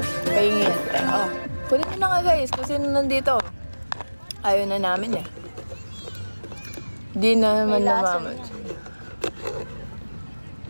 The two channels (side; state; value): both; inverted; correlation -1.00